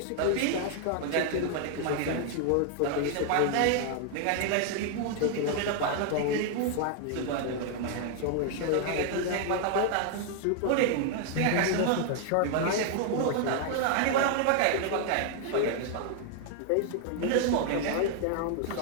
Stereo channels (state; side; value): different; both; correlation 0.00